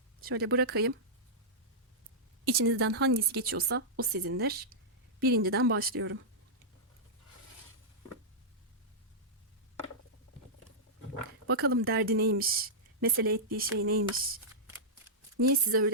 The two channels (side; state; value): both; normal; correlation -0.12